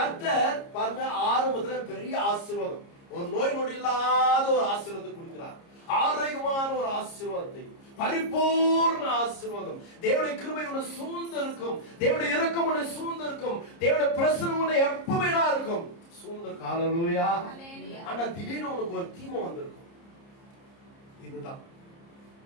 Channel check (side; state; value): right; late; 30 ms